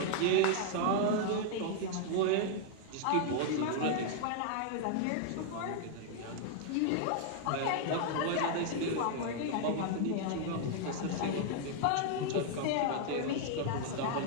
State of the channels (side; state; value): both; different; correlation 0.00